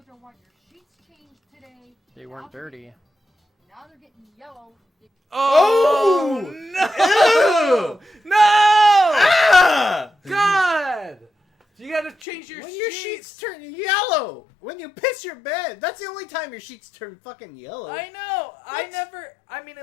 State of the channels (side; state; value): right; drops out; at 12.2 s